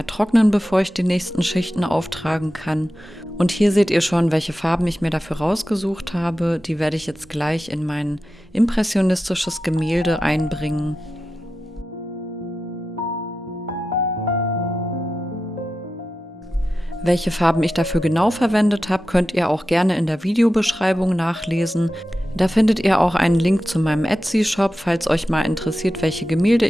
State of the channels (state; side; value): normal; both; correlation 0.92